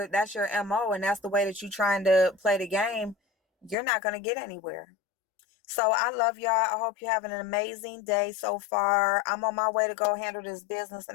MO and that's the way that you're trying to play the game, you're not going to get anywhere. So I love y'all. I hope you're having an amazing day so far. I'm on my way to go handle this business,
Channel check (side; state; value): right; drops out; at 3.8 s